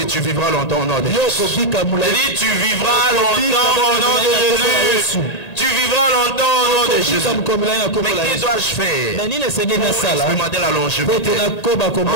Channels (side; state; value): right; late; 1.8 ms